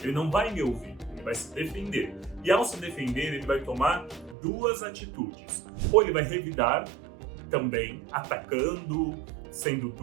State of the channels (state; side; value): drops out; left; at 4.4 s